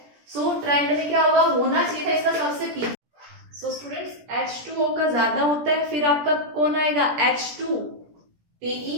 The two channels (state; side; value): late; left; 17 ms